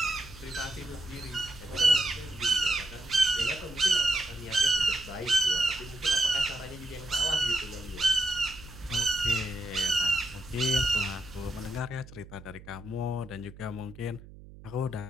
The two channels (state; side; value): noise; right; hum, 18 dB below the sound